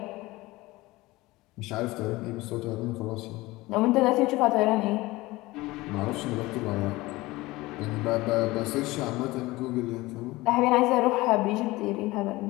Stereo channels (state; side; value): quieter; right; 20.1 dB